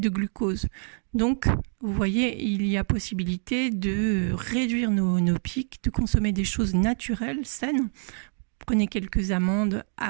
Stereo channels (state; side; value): silent; left; 56 dB below the other